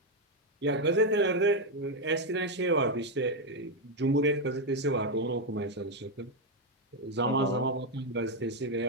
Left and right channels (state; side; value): normal; both; correlation 0.03